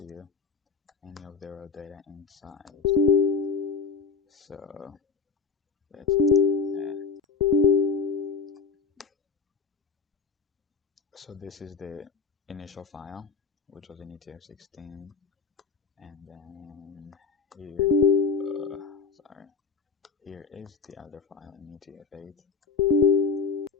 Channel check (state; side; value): quieter; right; 5.0 dB